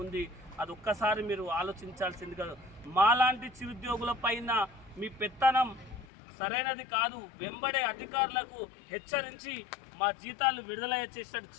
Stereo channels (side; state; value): right; drops out; at 6.1 s